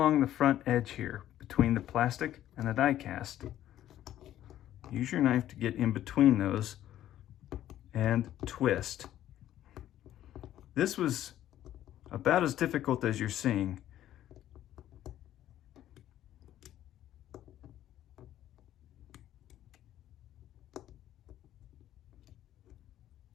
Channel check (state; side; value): quieter; right; 12.4 dB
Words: the front edge here between the plastic and the die cast, use your knife to get in between those and twist. This was about as difficult as you're seeing.